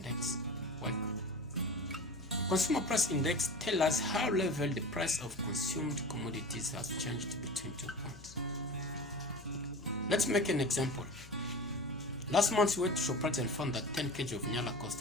work? Consumer price index tells us how level the price of consumed commodities has changed between 2 points. Let's make an example. Last month we went to Shoprite and found that 10 kg of nyala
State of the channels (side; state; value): left; noise; hum, 18 dB below the sound